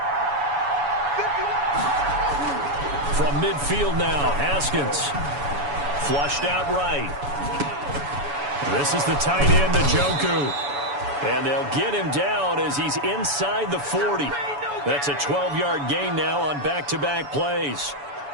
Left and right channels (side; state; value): left; late; 7.0 ms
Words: From midfield now, Haskins. Flushed out right. This is the tight end, Njoku. And they'll get him down as he's inside the 40. That's a 12-yard gain now on back-to-back plays.